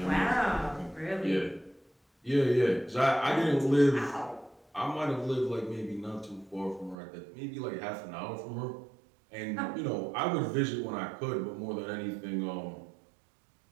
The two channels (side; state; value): left; drops out; at 7.0 s